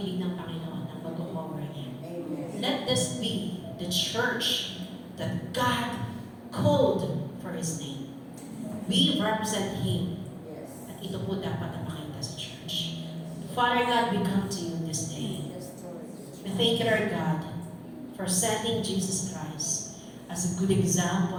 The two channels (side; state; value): both; identical; correlation 1.00